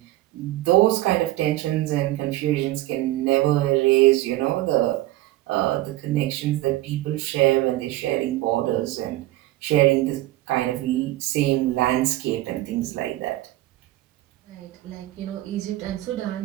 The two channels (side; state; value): left; quieter; 16.7 dB